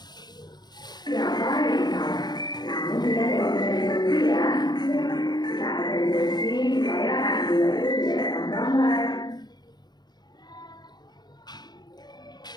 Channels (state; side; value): late; right; 0.20 ms